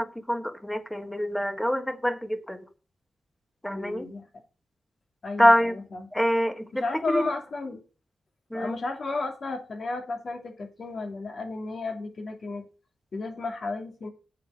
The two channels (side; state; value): both; normal; correlation 0.97